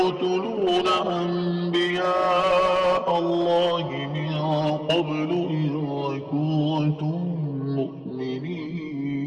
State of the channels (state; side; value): identical; both; correlation 1.00